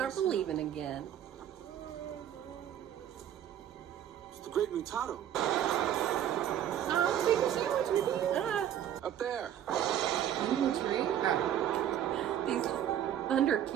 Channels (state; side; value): quieter; left; 10.6 dB